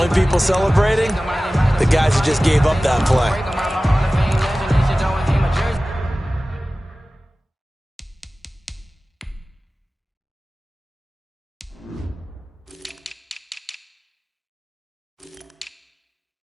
people celebrating, the guys who just gave up that play.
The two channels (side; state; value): both; normal; correlation 0.97